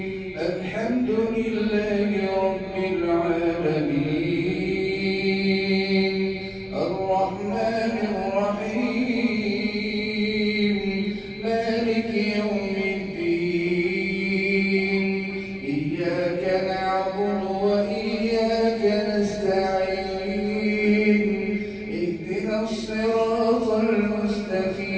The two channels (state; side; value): identical; both; correlation 1.00